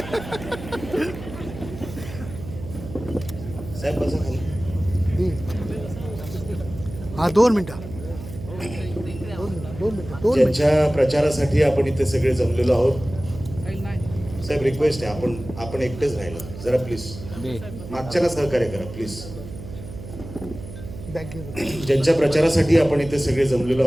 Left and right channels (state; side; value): noise; right; hum, 12 dB below the sound